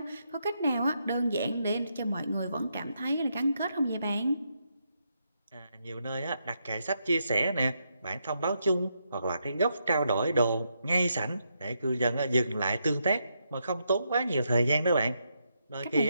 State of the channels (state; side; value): inverted; both; correlation -0.80